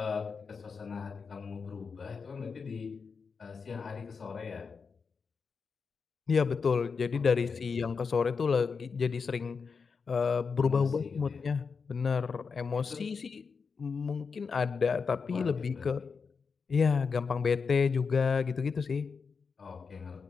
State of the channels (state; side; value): quieter; right; 5.3 dB